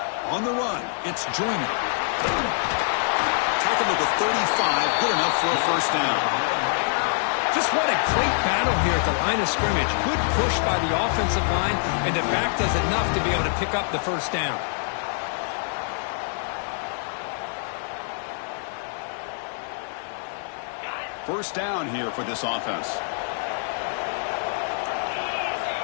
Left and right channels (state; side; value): silent; right; digital silence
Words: On the run, it's Joyner. Tackled at the 35, good enough for a first down. Just what a great battle here at the line of scrimmage. Good push by the offensive line, and the back does enough to be able to pick up the first down. First down here for this offense.